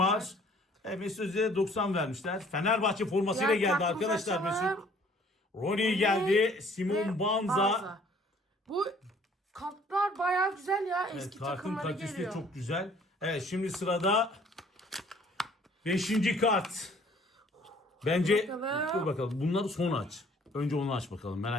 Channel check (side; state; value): both; normal; correlation 0.57